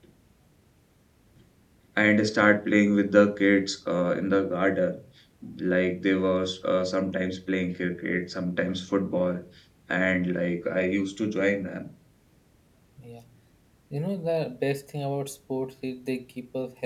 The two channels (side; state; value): both; identical; correlation 1.00